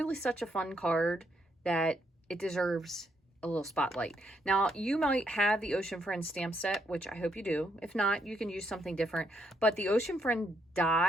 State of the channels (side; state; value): both; normal; correlation 0.75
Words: such a fun card that it deserves a little spotlight. Now, you might have the Ocean Friends stamp set, which I hope you do. If not, you can use something different, but the Ocean Friend